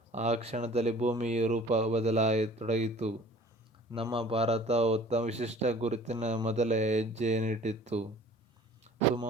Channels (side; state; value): both; normal; correlation 0.49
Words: ಆ ಕ್ಷಣದಲ್ಲಿ ಭೂಮಿಯ ರೂಪ ಬದಲಾಗತೊಡಗಿತು. ನಮ್ಮ ಭಾರತ ತಮ್ಮ ವಿಶಿಷ್ಟ ಗುರುತಿನ ಮೊದಲ ಹೆಜ್ಜೆಯನ್ನಿಟ್ಟಿತು.